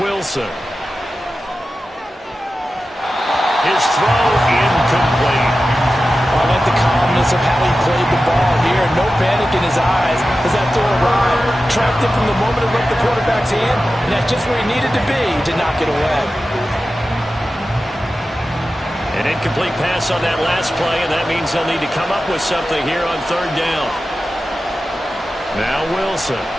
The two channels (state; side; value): normal; both; correlation 0.93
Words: His throw incomplete. I like the calmness of how he played the ball here. No panic in his eyes as that throw arrived. Tracked it from the moment it left the quarterback's hand, and that's just where he needed to be to knock it away. An incomplete pass on that last play, and that means they'll need to come up with something here on 3rd down. Now Wilson.